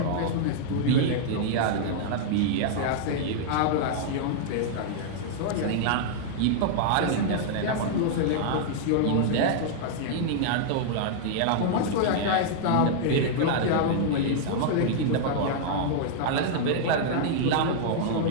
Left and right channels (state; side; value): different; both; correlation -0.01